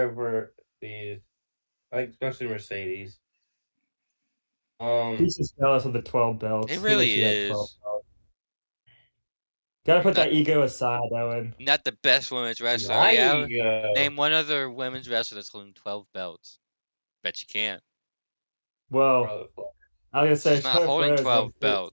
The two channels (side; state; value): both; inverted; correlation -1.00